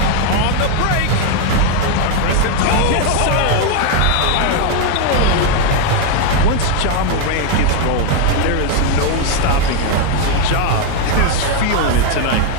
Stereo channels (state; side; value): different; both; correlation 0.01